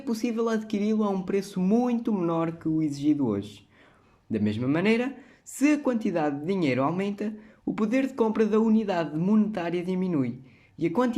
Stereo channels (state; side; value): identical; both; correlation 1.00